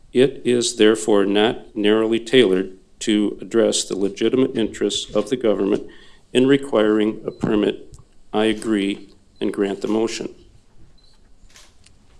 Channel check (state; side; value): identical; both; correlation 1.00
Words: It is therefore not narrowly tailored to address the legitimate interests of the government in requiring a permit. I agree and grant the motion.